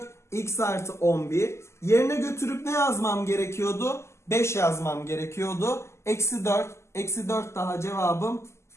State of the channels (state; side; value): late; right; 0.13 ms